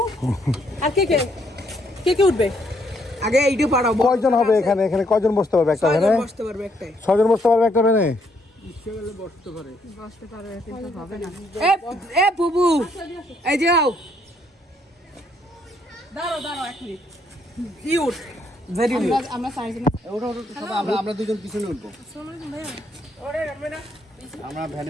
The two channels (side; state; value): both; normal; correlation 0.71